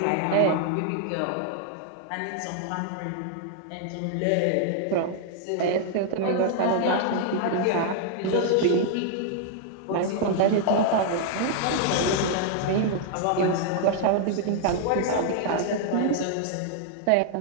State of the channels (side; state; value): both; different; correlation -0.01